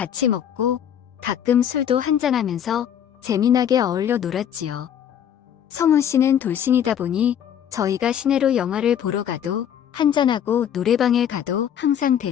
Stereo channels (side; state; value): right; quieter; 9.4 dB